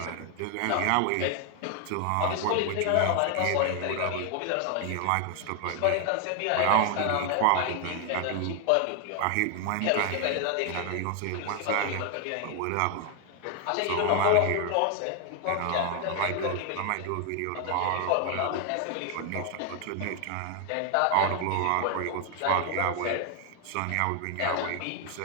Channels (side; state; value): both; different; correlation 0.00